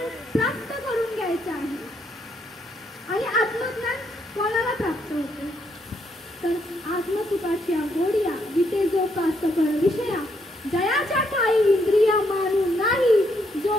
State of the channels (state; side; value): normal; both; correlation 0.74